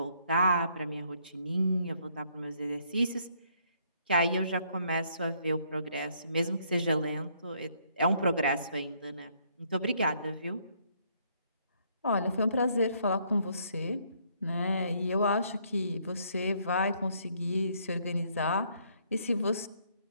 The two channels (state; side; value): inverted; both; correlation -0.68